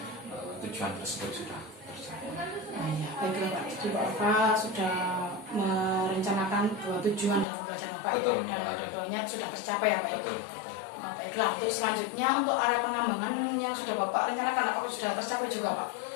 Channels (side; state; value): right; drops out; at 7.5 s